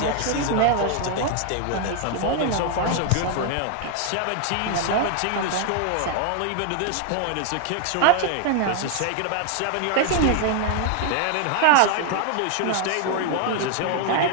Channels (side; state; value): both; different; correlation 0.00